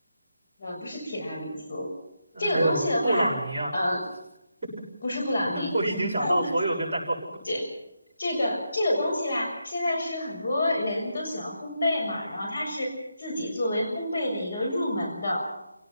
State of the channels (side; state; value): both; inverted; correlation -0.83